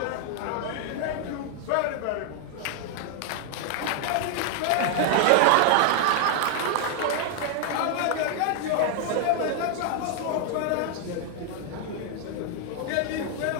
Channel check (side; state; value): both; different; correlation 0.00